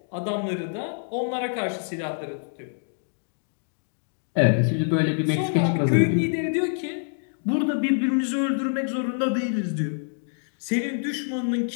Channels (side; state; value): right; silent; digital silence